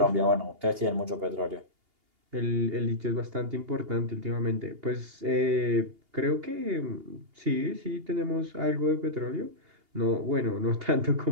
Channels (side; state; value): left; late; 2.8 ms